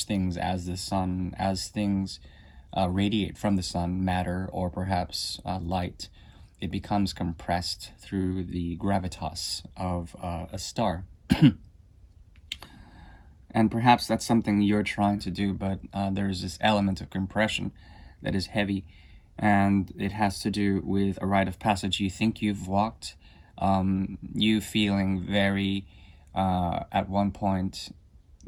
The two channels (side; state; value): both; identical; correlation 1.00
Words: things as the sun, as things radiate from the sun, matter, or perhaps light. It becomes compressed through the gravitas of a star. And perhaps that's something you're trying to do, but there's this element of compression that is heavy, and it has to do with a rite of passage you think you've walked, you feeling very, at one point,